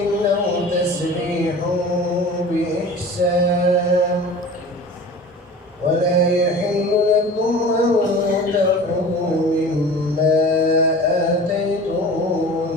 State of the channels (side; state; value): both; normal; correlation 0.39